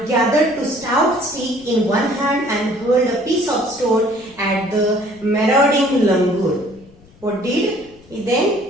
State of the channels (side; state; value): left; noise; rumble, 27 dB below the sound